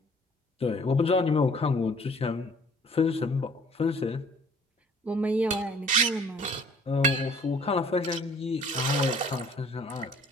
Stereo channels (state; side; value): normal; both; correlation 0.55